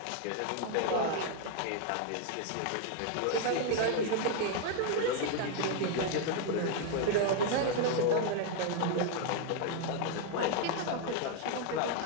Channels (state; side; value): different; both; correlation 0.00